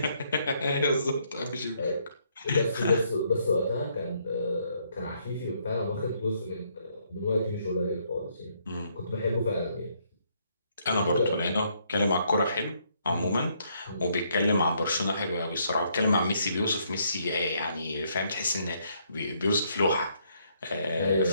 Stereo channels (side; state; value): both; inverted; correlation -0.71